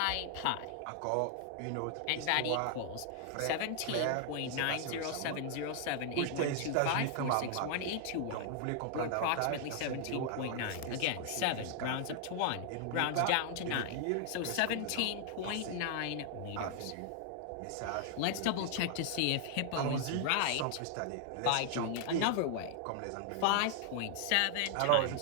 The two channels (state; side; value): different; both; correlation 0.00